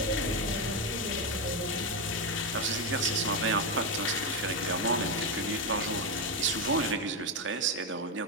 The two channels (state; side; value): normal; both; correlation 0.08